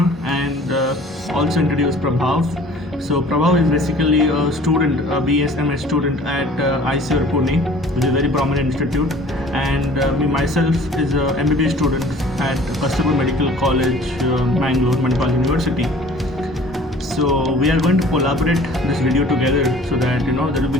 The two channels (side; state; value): both; normal; correlation 0.49